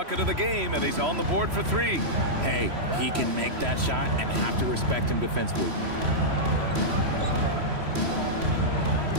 of the game, and he's on the board for three. Hey, he can make that shot and have to respect him defensively.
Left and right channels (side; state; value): left; late; 3.1 ms